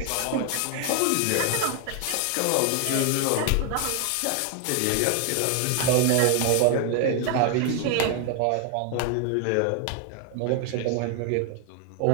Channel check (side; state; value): both; different; correlation 0.00